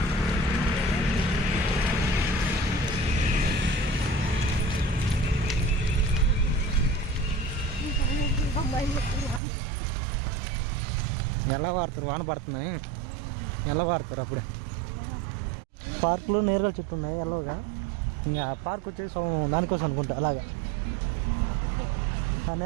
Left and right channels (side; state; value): left; drops out; at 9.4 s